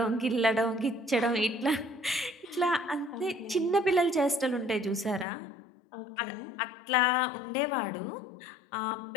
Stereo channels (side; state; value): right; drops out; at 5.2 s